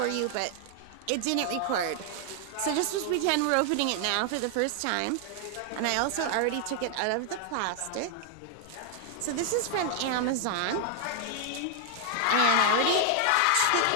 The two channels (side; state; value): both; different; correlation 0.00